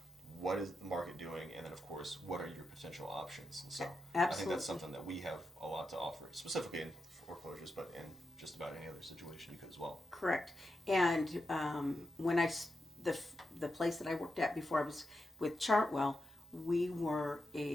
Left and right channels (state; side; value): normal; both; correlation 0.87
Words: what is the market doing, and then of course, what are your potential options. And so Absolutely. I think that's something that we have a lot to offer, specifically in foreclosures, but in just about any other situation you could as well. Correct. And when the place that I worked at before I was with Chartwell, we were